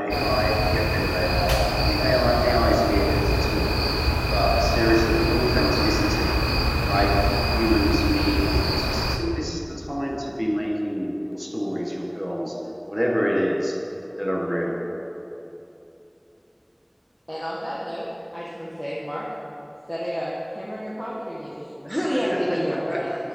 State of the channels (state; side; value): identical; both; correlation 1.00